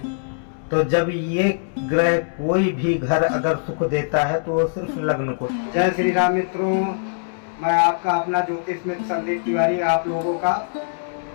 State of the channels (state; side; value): silent; right; digital silence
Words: तो जब ये ग्रह कोई भी घर अगर सुख देता है तो वो सिर्फ लग्न को। जय श्री राम मित्रों, मैं आपका अपना ज्योतिष मित्र संदीप तिवारी आप लोगों का